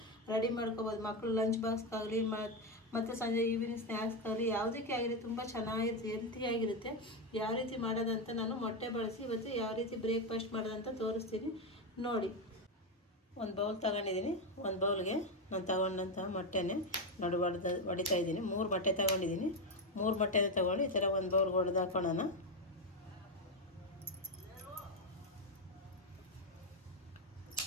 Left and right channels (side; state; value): both; normal; correlation 0.09